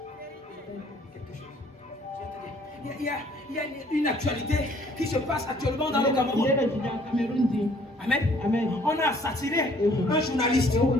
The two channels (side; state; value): both; normal; correlation 0.59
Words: Il y a une actualité qui se passe actuellement dans le Cameroun. Amen. On a assassiné un journaliste.